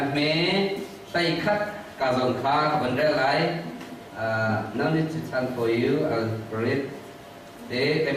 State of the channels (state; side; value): identical; both; correlation 1.00